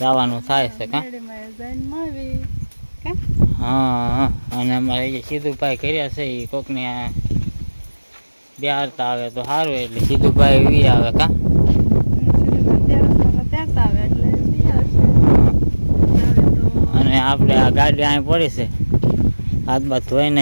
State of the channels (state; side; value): inverted; both; correlation -1.00